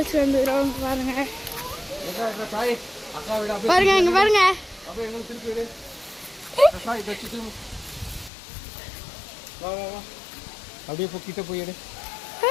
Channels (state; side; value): drops out; right; at 8.3 s